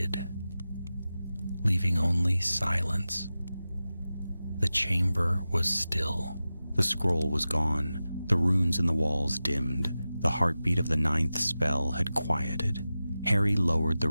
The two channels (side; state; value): both; inverted; correlation -0.94